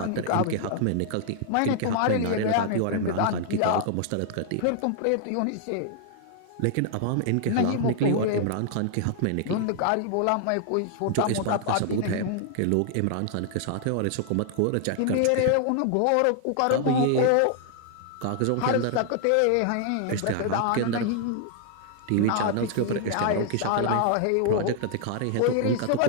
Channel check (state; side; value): different; both; correlation 0.00